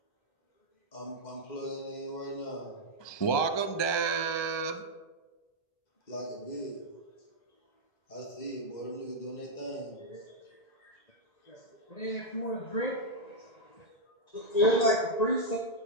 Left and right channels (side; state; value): right; late; 1.2 ms